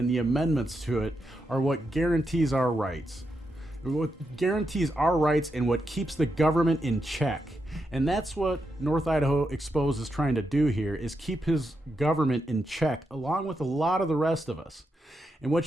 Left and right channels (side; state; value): both; normal; correlation 0.84